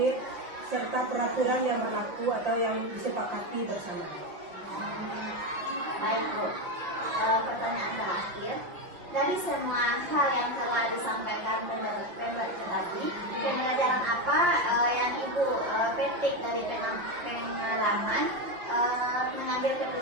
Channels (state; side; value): late; left; 5.7 ms